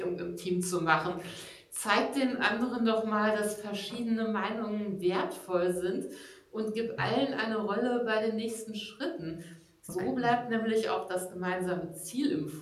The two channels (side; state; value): both; identical; correlation 1.00